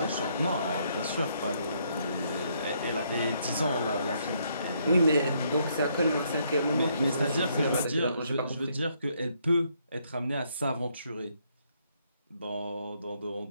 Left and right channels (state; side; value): inverted; both; correlation -0.72